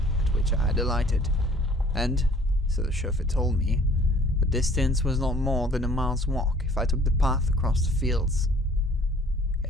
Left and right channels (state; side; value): normal; both; correlation 0.54